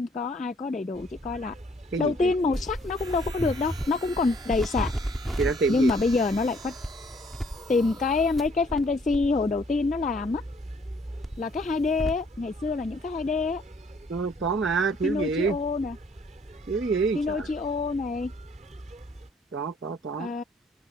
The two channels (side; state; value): both; normal; correlation 0.62